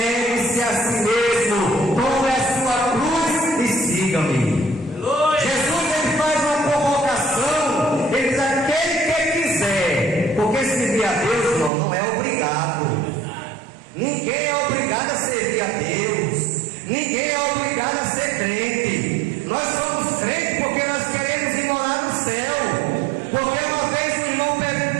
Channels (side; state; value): left; drops out; at 11.7 s